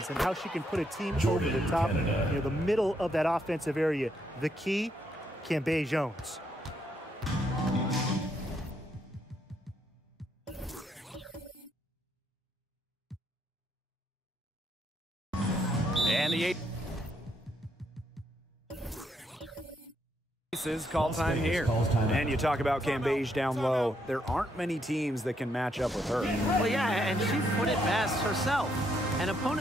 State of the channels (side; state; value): both; normal; correlation 0.75